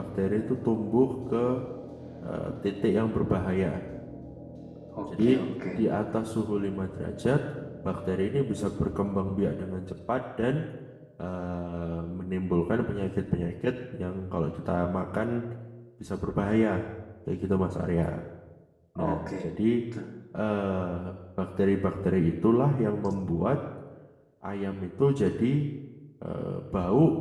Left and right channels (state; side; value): identical; both; correlation 1.00